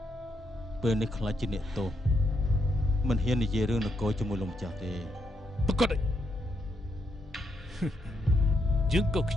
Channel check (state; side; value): normal; both; correlation 0.80